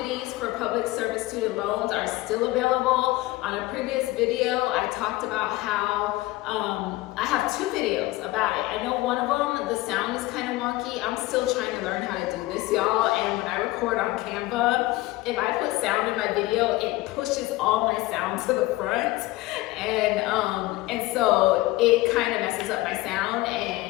for public service student loans are still available. On a previous video, I talked about how I have 2 videos about it. I know one of them, the sound is kind of wonky. I'm still trying to learn how to do this, y'all. And when I record on Canva, if I put sound in my video, it pushes all my sound to the front. And so it kind of messes up my sound,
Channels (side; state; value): right; quieter; 18.9 dB